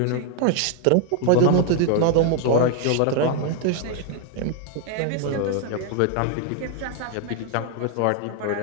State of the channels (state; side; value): different; both; correlation 0.00